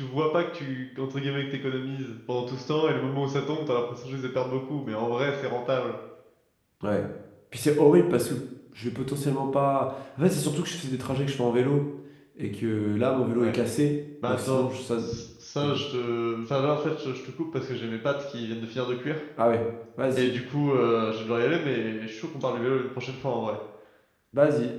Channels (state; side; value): identical; both; correlation 1.00